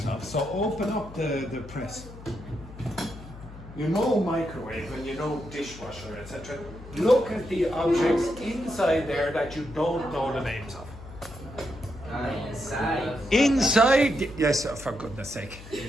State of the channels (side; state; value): left; noise; hum, 15 dB below the sound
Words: of. So open up the press. You know microwave and you know dishwasher, etc. Look at the objects inside there that you don't know the names of. Inside. Inside, yes, for goodness sake.